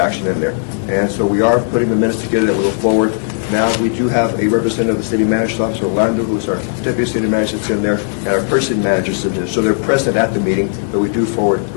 in there. And so we are putting the minutes together that we go forward. Now, we do have a representative of the city manager's office, Orlando, who's our deputy city manager, that's in there, and our purchasing manager's in there. So they're present at the meeting, but we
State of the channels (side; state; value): right; silent; digital silence